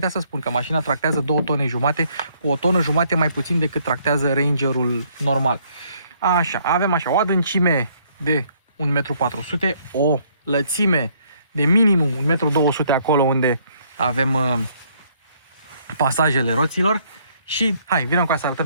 să spun că mașina tractează 2 tone jumate, cu 1 tonă jumate mai puțin decât tractează Rangerul normal. Așa, avem așa o adâncime de 1,4 m, o lățime de minimum 1,2 m acolo unde avem pasajele roților și hai, vină cu să arătăm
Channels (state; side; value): inverted; both; correlation -0.66